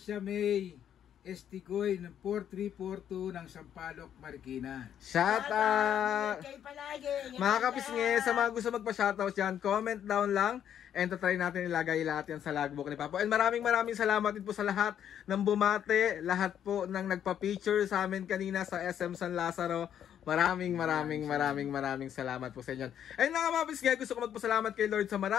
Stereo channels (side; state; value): right; quieter; 9.6 dB